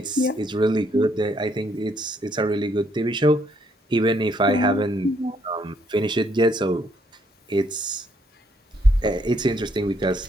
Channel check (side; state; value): both; normal; correlation 0.70